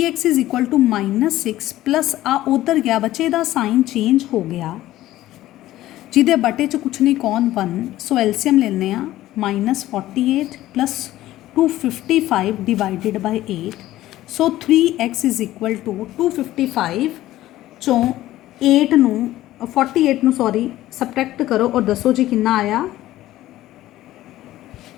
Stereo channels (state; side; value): quieter; right; 15.0 dB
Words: is equal to -6 plus आ उधर गया बच्चे का साइन चेंज हो गया जिदे बटे च कुछ नहीं कौन 1। सो एलसीएम लेने -48 plus 255 divided by 8। So 3x is equal to 255 चों 8 नू 48 नू सॉरी सबट्रैक्ट करो और दसो जी कितना आया।